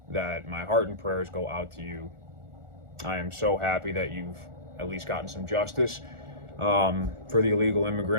that my heart and prayers go out to you. I am so happy that you've at least gotten some justice. For the illegal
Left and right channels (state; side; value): late; left; 1.4 ms